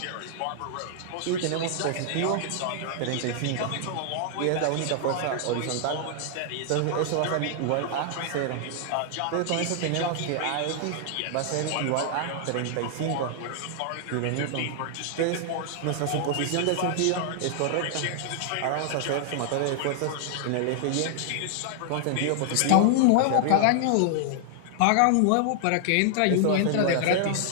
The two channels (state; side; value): different; both; correlation 0.00